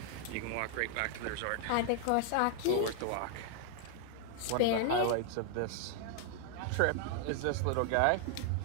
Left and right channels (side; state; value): both; different; correlation 0.00